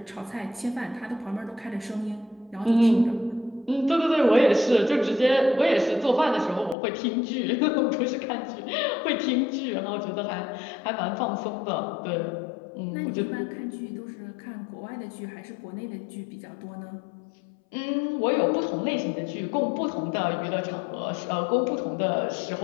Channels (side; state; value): right; drops out; at 6.8 s